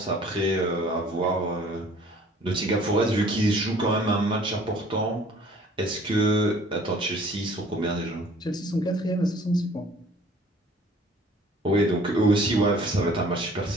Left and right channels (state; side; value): normal; both; correlation 0.53